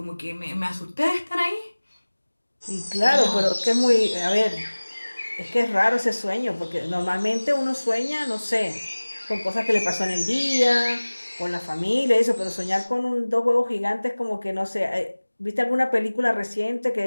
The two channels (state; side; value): inverted; both; correlation -1.00